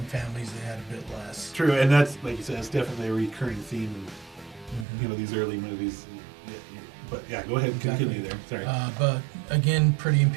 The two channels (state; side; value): drops out; left; at 4.9 s